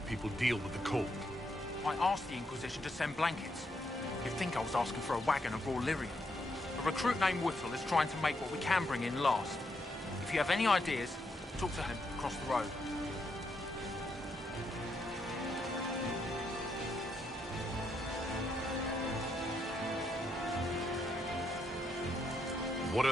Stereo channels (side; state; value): both; normal; correlation 0.78